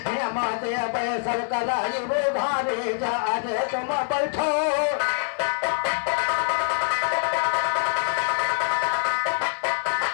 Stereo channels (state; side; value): silent; right; 62 dB below the other